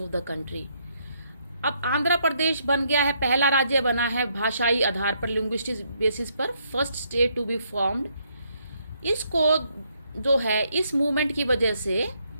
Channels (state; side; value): inverted; both; correlation -0.73